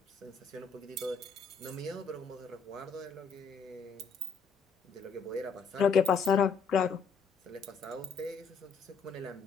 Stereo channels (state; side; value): quieter; right; 5.3 dB